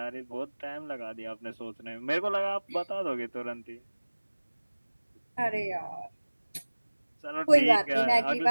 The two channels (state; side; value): inverted; both; correlation -1.00